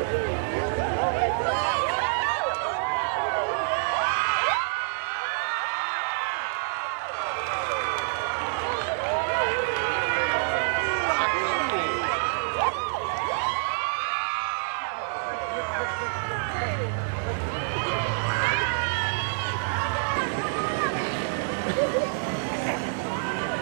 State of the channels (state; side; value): silent; left; digital silence